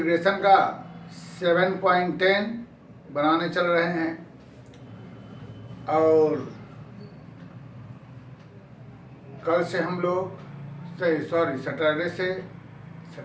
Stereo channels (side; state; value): both; identical; correlation 1.00